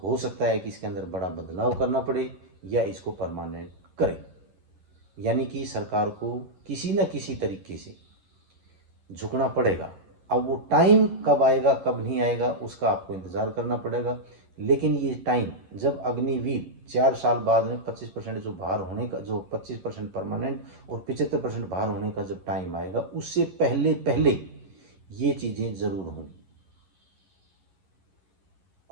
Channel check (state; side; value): late; left; 11 ms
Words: हो सकता है कि इसके अंदर बड़ा बदलाव करना पड़े या इसको परमानेंट करें। यानी कि सरकार को किसी न किसी तरीके से झुकना पड़ेगा। अब वो टाइम कब आएगा कब नहीं आएगा उसका आपको इंतज़ार करना पड़ेगा, लेकिन ये टाइम जब अग्निवीर 4 साल बाद में 25% जो बाहर होने का, जो 25% परमानेंट और 75% बाहर होने का जब टाइम आएगा, उससे पहले पहले ये चीज़ें ज़रूर होंगी।